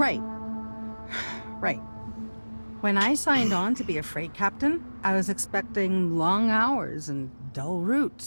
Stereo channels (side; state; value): both; inverted; correlation -1.00